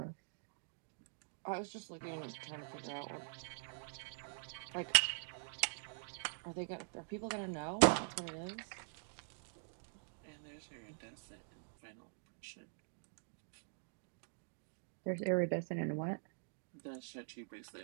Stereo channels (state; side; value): silent; left; digital silence